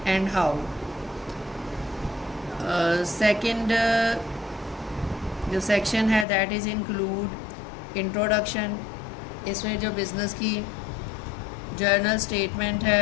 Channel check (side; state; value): right; drops out; at 6.2 s